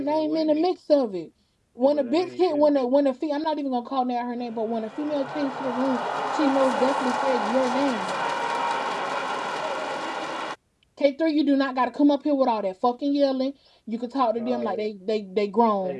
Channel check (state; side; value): identical; both; correlation 1.00